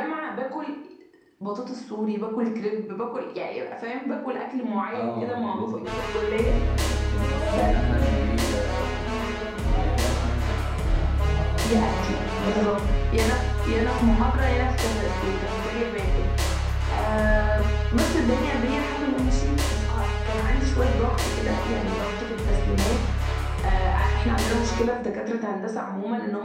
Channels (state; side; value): identical; both; correlation 1.00